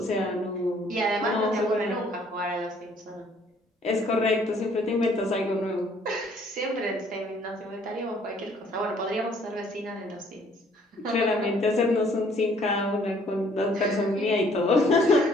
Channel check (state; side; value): normal; both; correlation 0.61